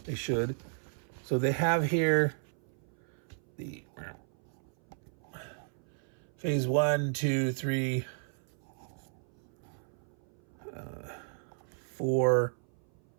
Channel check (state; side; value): silent; left; 55 dB below the other